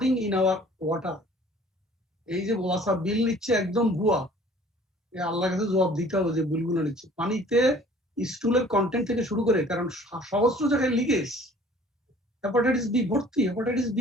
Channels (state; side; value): normal; both; correlation 0.52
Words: in our water. এই যে ওয়াসা বিল নিচ্ছে একদম ভুয়া, আল্লাহর কাছে জবাব দিতে হবে যে বিলগুলো নিচ্ছে। পানিতে স্টুলের কন্টেন্ট থেকে শুরু করে, কারণ সহস্র জায়গায় লিকেজ, হেপাটাইটিস বি ভর্তি, হেপাটাইটিস